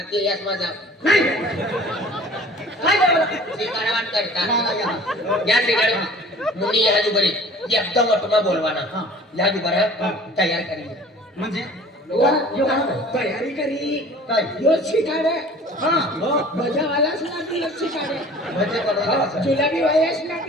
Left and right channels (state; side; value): normal; both; correlation 0.47